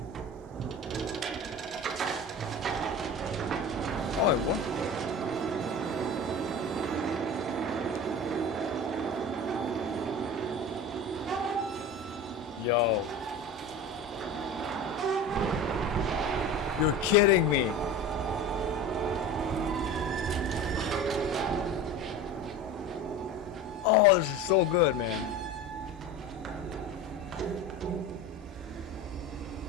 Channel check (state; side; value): normal; both; correlation 0.33